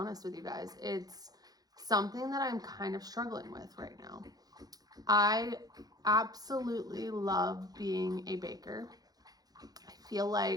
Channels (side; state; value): left; late; 0.19 ms